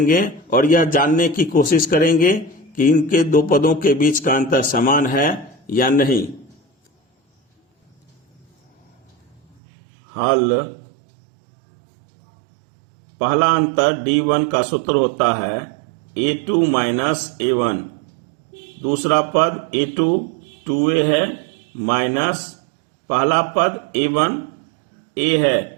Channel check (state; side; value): drops out; left; at 9.6 s